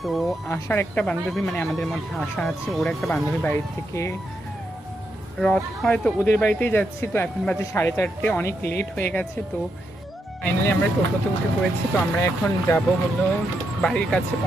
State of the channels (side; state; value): both; normal; correlation 0.82